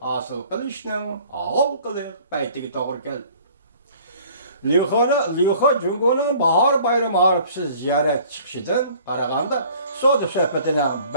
asıl kılışının ağıl kılık paytigi doğru geldi. Liu He Jungo'nun bahar bayramı harpsiz ziyaret çıkışıdan qaraganda Saudi söhbetine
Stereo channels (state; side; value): inverted; both; correlation -0.52